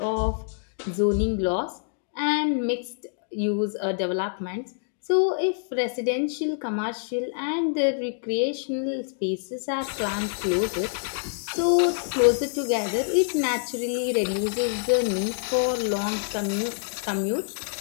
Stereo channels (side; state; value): right; silent; digital silence